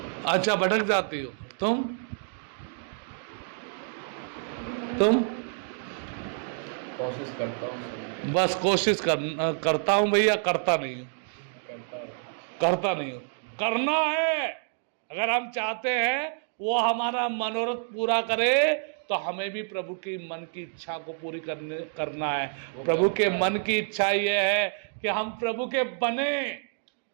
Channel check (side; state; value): left; silent; 59 dB below the other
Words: अच्छा भटक जाती हो तुम? कोशिश करता हूँ, बस कोशिश करता हूँ भैया, करता नहीं हूँ। करना है। अगर हम चाहते हैं वो हमारा मनोरथ पूरा करे तो हमें भी प्रभु की मन की इच्छा को पूरी करना है। प्रभु के मन की इच्छा ये है कि हम प्रभु के बने।